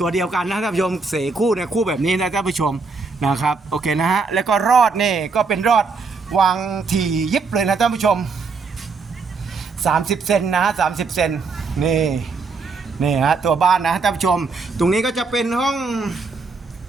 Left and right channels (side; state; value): left; quieter; 4.4 dB